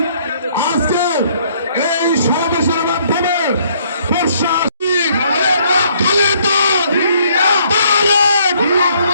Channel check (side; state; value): both; inverted; correlation -0.65